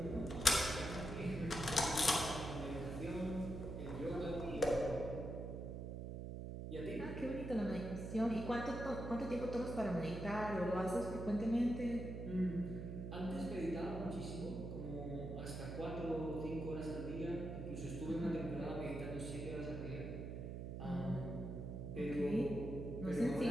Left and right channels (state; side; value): noise; right; hum, 6 dB below the sound